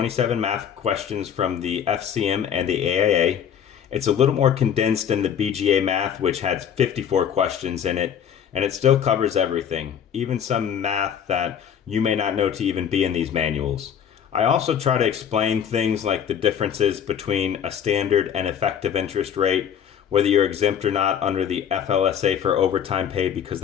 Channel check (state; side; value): quieter; right; 8.5 dB